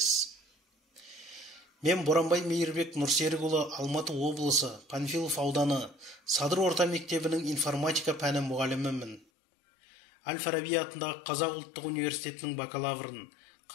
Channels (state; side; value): drops out; right; at 9.2 s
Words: Мен Боранбай Мейірбек Нұрсерікұлы, Алматы облысы, Панфилов ауданы, Садыр орта мектебінің информатика пәні мұғалімімін. Әл-Фараби атындағы Қазақ ұлттық университетінің бакалаврын,